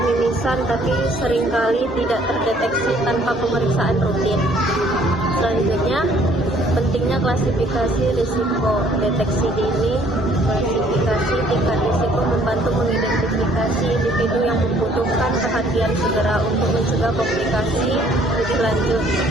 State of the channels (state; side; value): normal; both; correlation 0.60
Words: tapi seringkali tidak terdeteksi tanpa pemeriksaan rutin. Selanjutnya, pentingnya klasifikasi risiko. Deteksi dini, klasifikasi tingkat risiko membantu mengidentifikasi individu yang membutuhkan perhatian segera untuk mencegah komplikasi lebih lanjut.